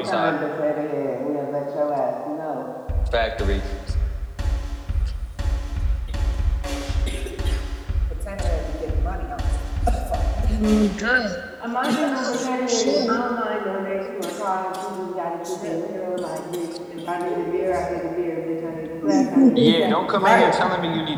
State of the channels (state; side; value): identical; both; correlation 1.00